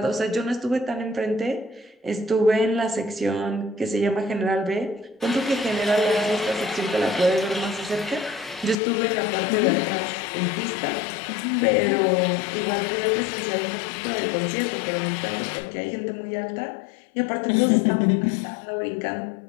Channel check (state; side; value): drops out; right; at 8.8 s